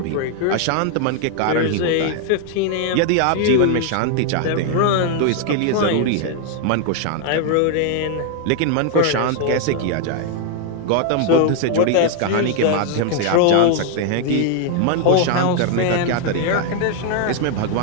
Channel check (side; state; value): both; different; correlation 0.00